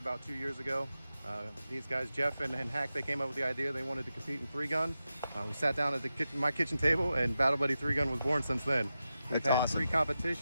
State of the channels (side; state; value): both; inverted; correlation -0.90